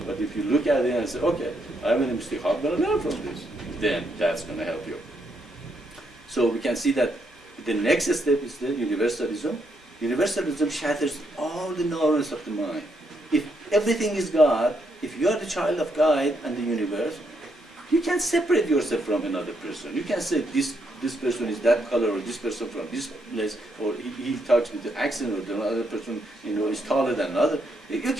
But if you look at it and say, okay, I made a mistake, how am I going to learn from this? Then that's going to help you. So we can see that the next step is the universalism. Universalism shatters all the norms of the mind. If everything is God, if you are the child of God and the universe, You can't separate yourself from another person. You can't say this person is that color, or this person from this place, or he talks with the accent, or the other person is taller than another. You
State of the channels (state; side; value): normal; both; correlation 0.77